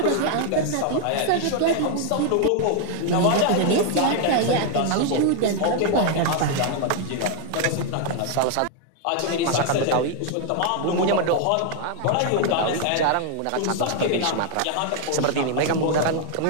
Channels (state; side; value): different; both; correlation 0.00